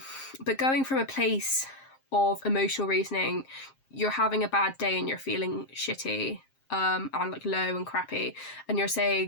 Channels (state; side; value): late; right; 7.5 ms